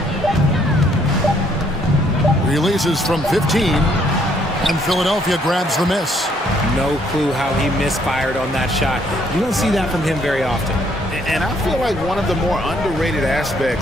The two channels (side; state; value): both; normal; correlation 0.67